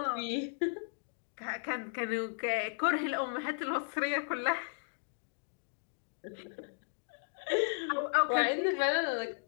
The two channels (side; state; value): right; silent; digital silence